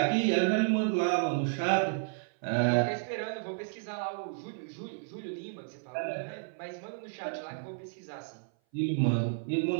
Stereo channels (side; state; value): left; silent; 56 dB below the other